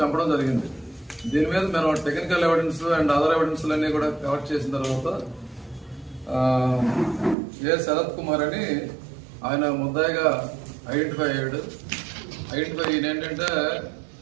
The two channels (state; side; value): drops out; left; at 7.4 s